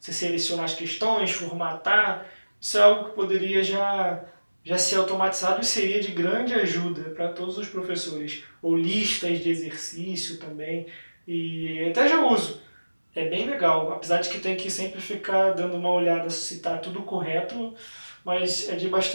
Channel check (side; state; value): both; inverted; correlation -1.00